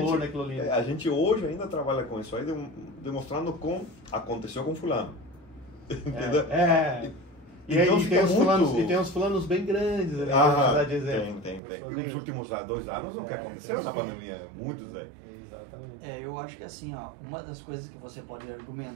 naquilo ali. A gente hoje ainda trabalha com isso aí, demonstrando como aconteceu com fulano. Entendeu? E então aí tem uns fulanos bem grandes ali, de exemplo. Tem. E os últimos 2 anos, o que aconteceu na pandemia? Muitos aí. Exatamente. Eu acho que assim, uma das coisas que você pode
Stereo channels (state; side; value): drops out; left; at 11.6 s